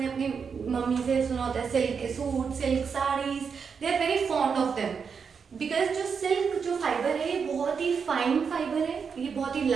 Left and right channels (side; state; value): left; quieter; 6.1 dB